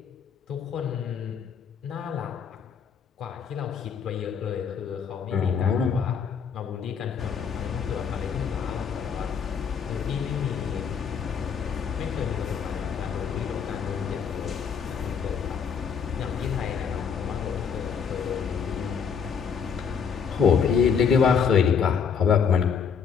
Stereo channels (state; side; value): quieter; right; 6.8 dB